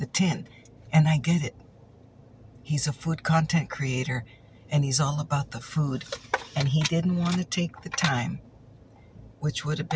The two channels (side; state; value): both; identical; correlation 1.00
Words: tin. And I get it. He's a food content creator, and he's all about the food. And he didn't want to take the time, which would have